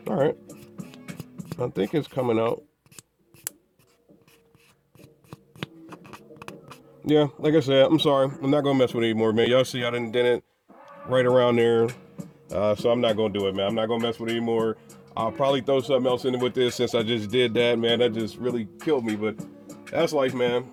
all right. I think it's coming out. Yeah, like I said, I'm sorry. I'm not going to mess with it anymore, man. Y'all see I done did it right around there. So I'm not going to do it, man. I'm not going to mess with it anymore. I'll probably throw something else in with this since I just did that, man. That just really killed me, but that's life, man.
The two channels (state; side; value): identical; both; correlation 1.00